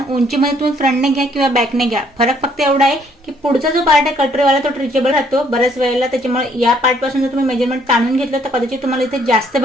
उंचीमध्ये तुम्ही फ्रंटने घ्या किंवा बॅकने घ्या. फरक फक्त एवढा आहे की पुढचा जो पार्ट आहे कटोरीवाला तो ट्रिचेबल राहतो बऱ्याच वेळेला. त्याच्यामुळे या पार्ट पासून जर तुम्ही मेजरमेंट ताणून घेतलं तर कदाचित तुम्हाला इथे जास्त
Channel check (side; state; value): both; normal; correlation 0.65